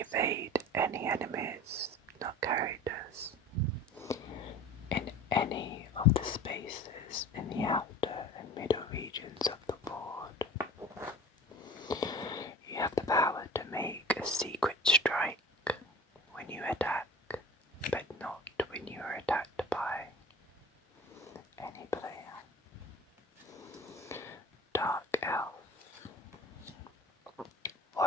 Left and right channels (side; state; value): both; normal; correlation 0.40